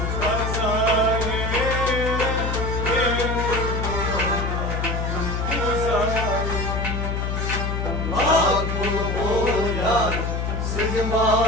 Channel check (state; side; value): noise; left; hum, 1 dB below the sound